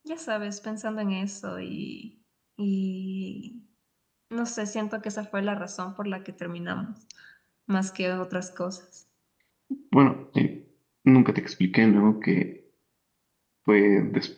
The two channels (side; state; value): both; identical; correlation 1.00